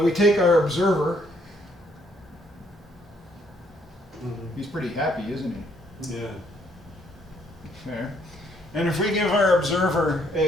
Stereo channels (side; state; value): both; normal; correlation 0.68